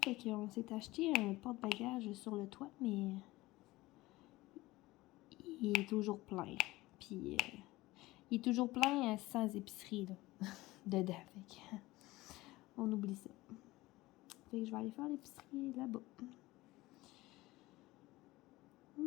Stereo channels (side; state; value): right; quieter; 19.2 dB